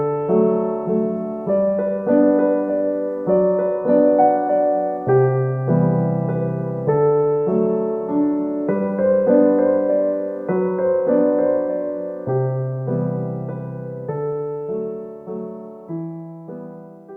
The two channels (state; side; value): identical; both; correlation 1.00